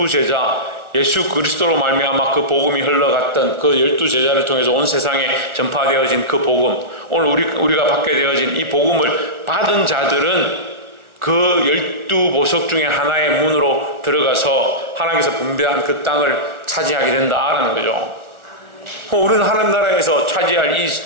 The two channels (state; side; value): late; left; 1.4 ms